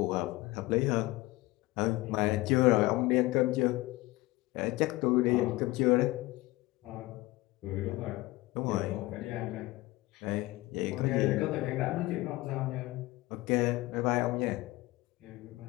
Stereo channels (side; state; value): right; quieter; 19.8 dB